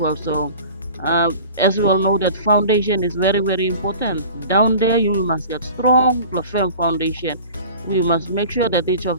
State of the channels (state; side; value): inverted; both; correlation -0.41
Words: So as we all know, that foundation is very, very important. Down there you must get strong, firm foundation. We must make sure that each